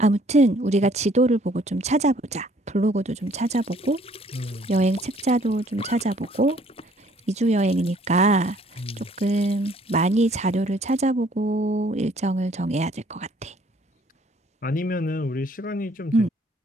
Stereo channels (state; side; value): normal; both; correlation 0.61